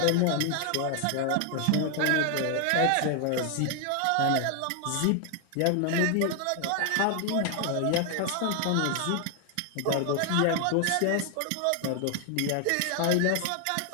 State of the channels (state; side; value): different; both; correlation 0.00